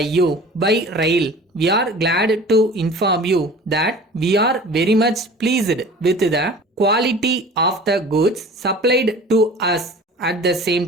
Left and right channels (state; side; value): normal; both; correlation 0.42